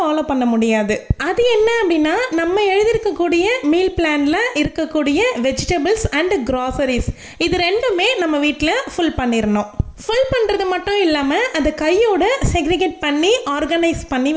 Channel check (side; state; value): both; identical; correlation 1.00